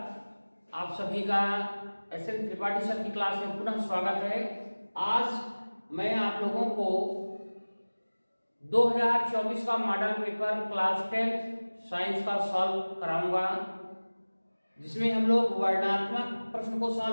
आप सभी का एस.एन. त्रिपाठी सर की क्लास में पुनः स्वागत है। आज मैं आप लोगों को 2024 का मॉडल पेपर क्लास 10 साइंस का सॉल्व कराऊंगा, जिसमें हम लोग वर्णनात्मक प्रश्न को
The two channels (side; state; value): both; inverted; correlation -1.00